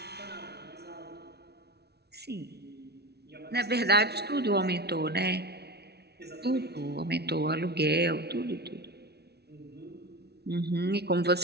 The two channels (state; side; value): late; left; 0.48 ms